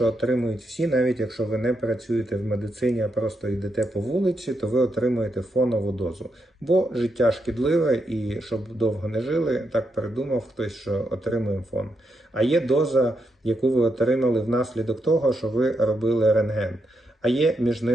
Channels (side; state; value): both; normal; correlation 0.82